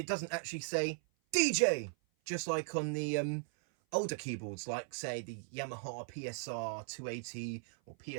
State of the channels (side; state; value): left; silent; 53 dB below the other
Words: doesn't actually say DJ, just like on the older keyboards, like say the Yamaha PSR-290 or